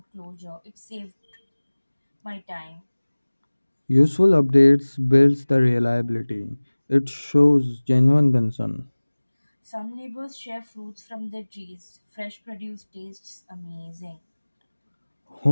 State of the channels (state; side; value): inverted; both; correlation -1.00